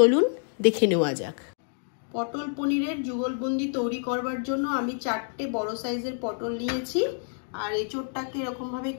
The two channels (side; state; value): right; silent; digital silence